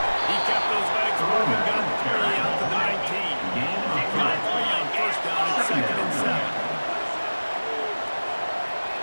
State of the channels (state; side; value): inverted; both; correlation -1.00